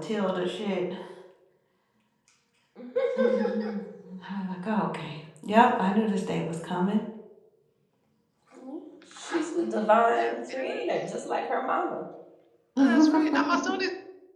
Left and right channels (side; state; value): both; identical; correlation 1.00